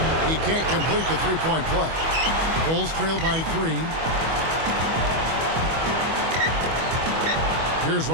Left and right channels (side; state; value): left; late; 25 ms